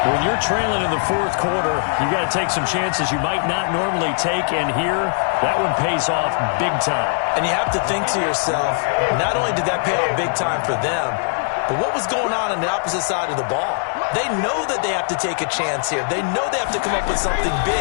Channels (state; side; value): silent; right; digital silence